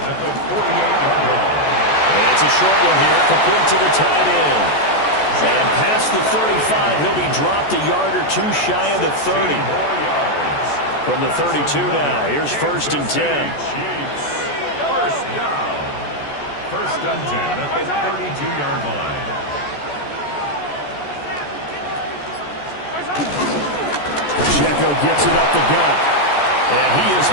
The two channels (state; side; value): late; right; 14 ms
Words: the 48-yard line. It's a short one here, complete to the tight end. And past the 35, he'll be dropped a yard or 2 shy of the 30. From the 32 now, here's 1st and 10. 1st down. 1st and 10 at the 32-yard line. Pacheco gets it up the gut. And he is